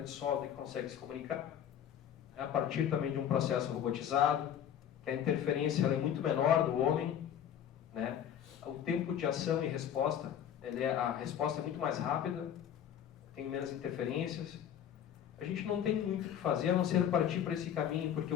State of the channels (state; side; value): quieter; right; 9.7 dB